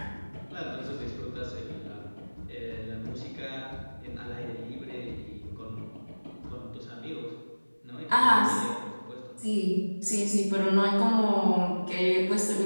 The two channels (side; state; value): both; inverted; correlation -1.00